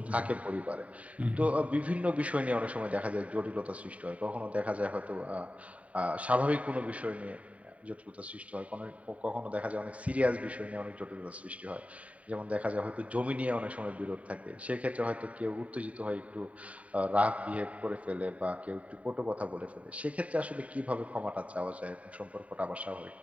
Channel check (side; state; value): left; late; 0.067 ms